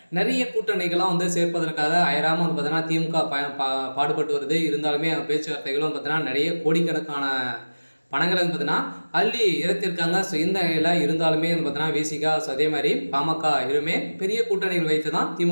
நிறைய கூட்டணிகளாம் சேர்ப்பதற்காக அயராமல் பார்த்தீங்கன்னா திமுக பாடுபட்டு வருது. இருந்தாலுமே பேச்சுவார்த்தைகளும் பார்த்தீங்கன்னா நிறைய கோடிக்கணக்கான பணங்களை பார்த்தீங்கன்னா அள்ளி இறத்திருக்காங்க. ஸோ இந்த நிலையில் இருந்தாலுமே பார்த்தீங்கன்னா விசிகா, ஸோ அதே மாதிரி பாமக இருமே பெரிய கூட்டணிகள் வைத்து தான்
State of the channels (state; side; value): inverted; both; correlation -1.00